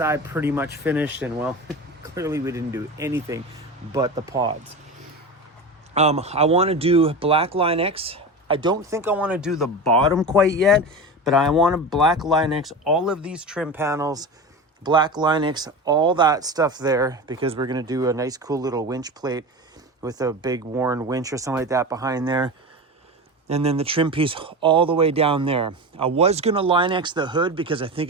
pretty much finished. And well, clearly we didn't do anything but the pods. I want to do black Line-X. I don't think I want to do the bottom quite yet, but I want to black Line-X all of these trim panels, black Line-X all that stuff there, because we're going to do a nice cool little winch plate with a big Warren winch or something like that behind there. And then the trim piece all the way down there. I was going to Line-X the hood because I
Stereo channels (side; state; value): both; normal; correlation 0.26